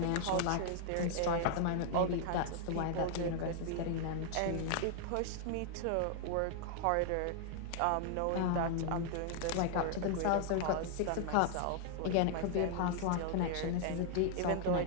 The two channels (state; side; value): different; both; correlation 0.00